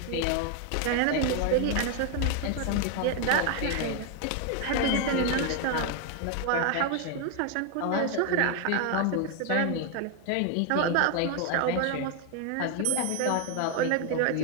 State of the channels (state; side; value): different; both; correlation 0.01